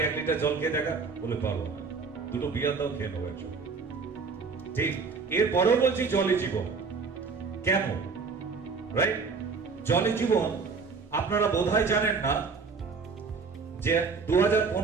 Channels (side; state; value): left; quieter; 4.9 dB